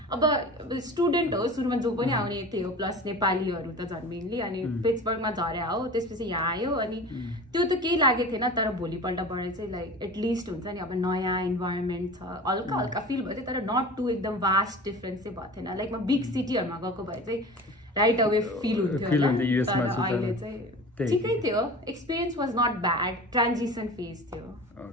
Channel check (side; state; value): both; normal; correlation 0.36